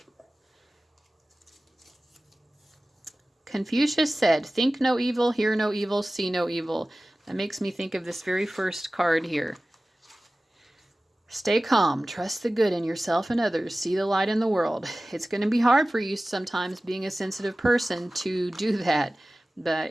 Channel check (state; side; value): normal; both; correlation 0.97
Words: Confucius said, think no evil, hear no evil, see no evil. That makes me think of this very first card here. Stay calm, trust the good in yourself and others, see the light in the world. It's going to be hard for you sometimes, being a sensitive person, to do that.